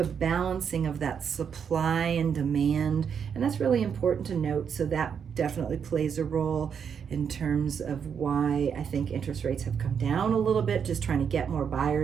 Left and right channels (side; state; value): left; quieter; 7.2 dB